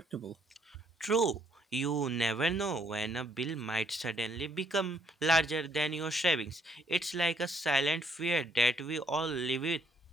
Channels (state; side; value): normal; both; correlation 0.68